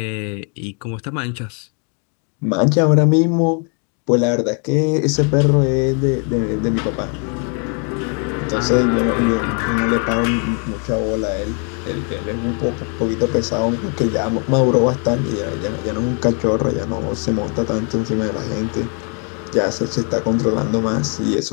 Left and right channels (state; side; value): quieter; right; 39.3 dB